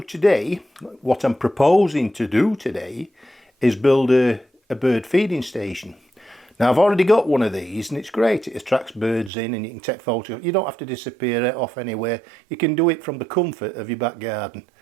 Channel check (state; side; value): drops out; left; at 9.3 s